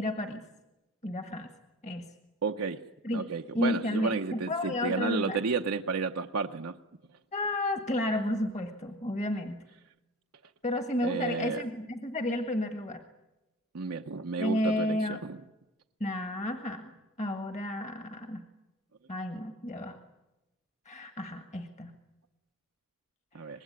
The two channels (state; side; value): normal; both; correlation 0.36